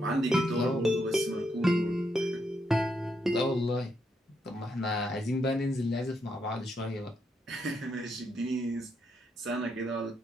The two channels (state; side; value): normal; both; correlation 0.78